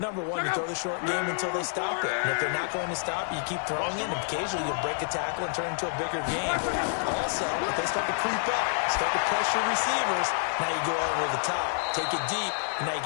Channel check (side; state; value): right; silent; digital silence